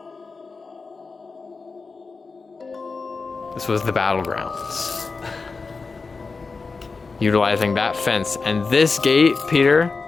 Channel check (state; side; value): quieter; right; 4.4 dB